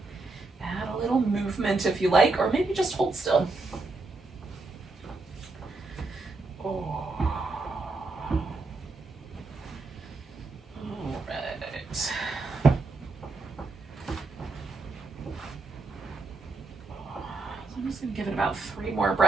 Add a little movement if you like, or maybe just hold still. Give it about 3 more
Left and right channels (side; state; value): left; quieter; 3.5 dB